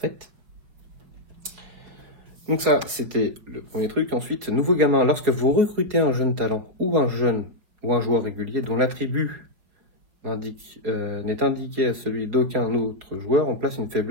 Donc ça, c'était le premier truc. Ensuite, nouveau gamin. Lorsque vous recrutez un jeune talent ou un joueur régulier dont l'attribut n'est indiqué à celui d'aucun autre joueur, on place une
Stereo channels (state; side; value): late; left; 4.8 ms